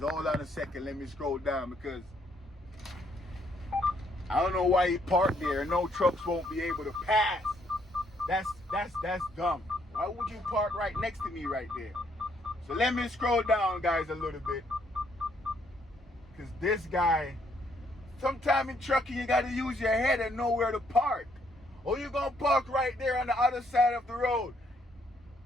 on a second. Let me scroll down because I don't know why he parked there. No trucks won't be able to pass. That's dumb. Why would you park right next to me right there? So let me scroll down, guys, a little bit. Because this guy, sometime in trucking, you got to use your head and know where to park. Or you're going to park right there on the other side of the road.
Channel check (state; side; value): normal; both; correlation 0.70